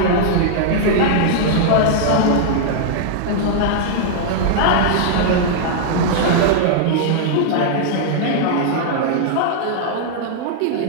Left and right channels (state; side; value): different; both; correlation -0.01